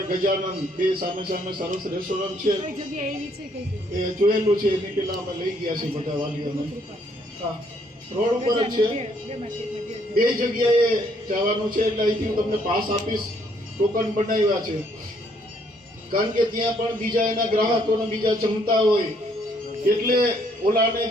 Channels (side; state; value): both; normal; correlation 0.68